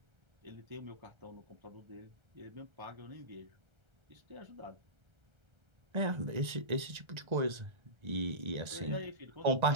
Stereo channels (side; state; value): left; late; 1.3 ms